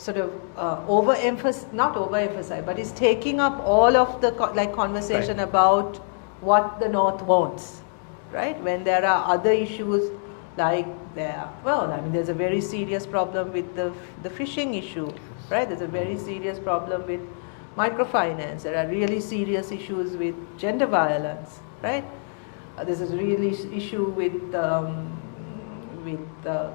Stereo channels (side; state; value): right; silent; 62 dB below the other